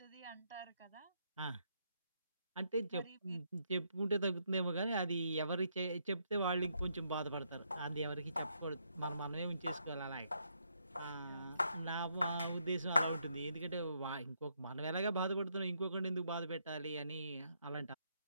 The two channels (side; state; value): both; inverted; correlation -0.76